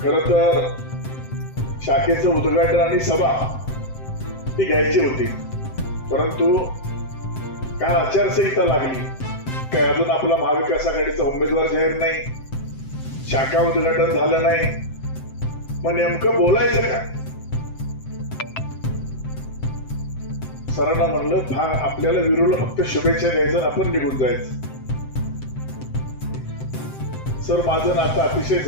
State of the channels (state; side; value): late; right; 7.7 ms